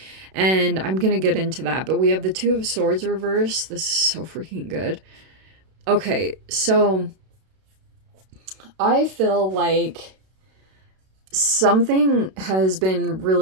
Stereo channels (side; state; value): left; late; 32 ms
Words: And I'm going to get into that. But we have the 2 of Swords reverse. This is so freaking good. Okay, so I feel like something has been